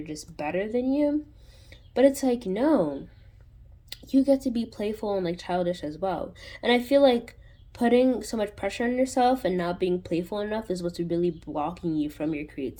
just better than you. But it's like, no, you get to be playful and like childish as well. And I feel like putting so much pressure on yourself and not being playful enough is what's really blocking you from your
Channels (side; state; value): both; identical; correlation 1.00